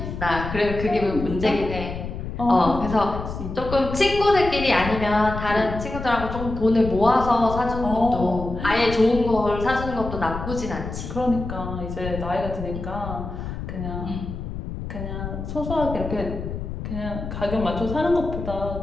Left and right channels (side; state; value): left; noise; rumble, 7 dB below the sound